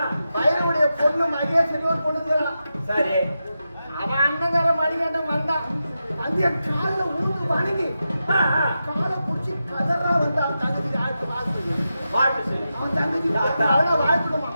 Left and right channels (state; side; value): inverted; both; correlation -0.89